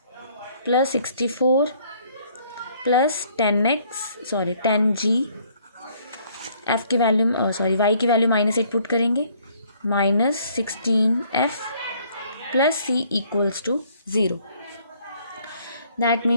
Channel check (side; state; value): both; inverted; correlation -0.62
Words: प्लस 64 प्लस 10g, f की वैल्यू y की वैल्यू -8 पुट करेंगे, -16f plus c equals to 0। That